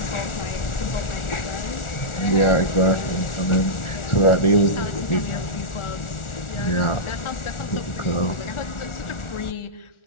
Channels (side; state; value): right; late; 1.4 ms